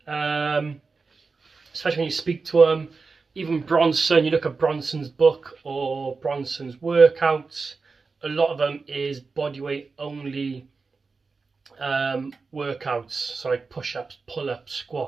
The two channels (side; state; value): left; quieter; 4.4 dB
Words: especially when you speak to them. Even Bronson, you look at Bronson's book or Bronson's workouts, a lot of them is bodyweight only workouts. So like push-ups, pull-ups,